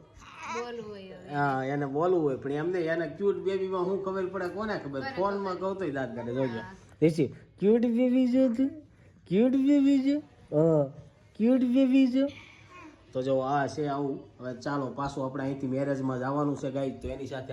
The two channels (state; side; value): identical; both; correlation 1.00